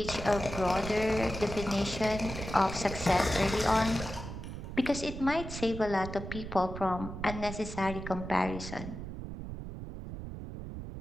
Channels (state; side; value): noise; right; rumble, 8 dB below the sound